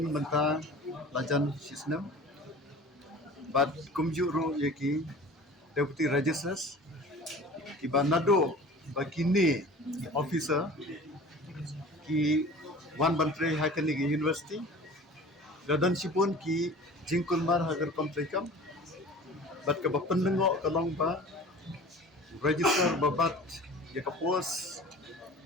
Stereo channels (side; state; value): both; normal; correlation 0.41